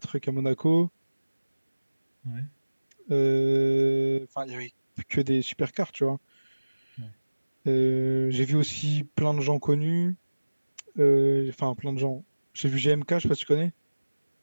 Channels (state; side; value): inverted; both; correlation -1.00